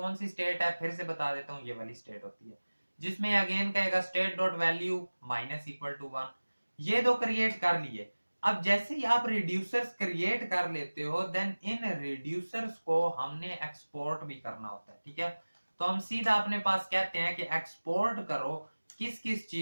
सी स्टेट है फिर से बता देता हूं, ये वाली स्टेट होती है जिसमें अगेन कहेगा state dot value minus equal to 1। ये दो क्रिएट कर लिए। अब जैसे ही आप रिड्यूसर्स क्रिएट कर लेते हो देन इन रिड्यूसर्स को हमने एक्सपोर्ट भी करना होता है, ठीक है। तो हम सीधा अपने पास कहते हैं कि एक्सपोर्ट करो किस किस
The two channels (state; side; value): inverted; both; correlation -1.00